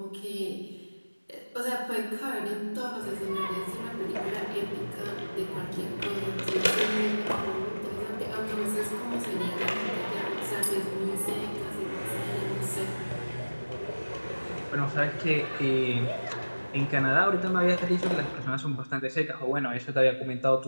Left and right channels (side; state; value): both; inverted; correlation -1.00